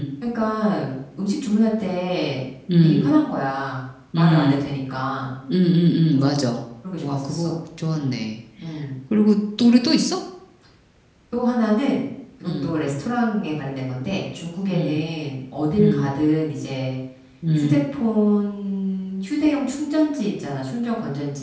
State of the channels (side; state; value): both; identical; correlation 1.00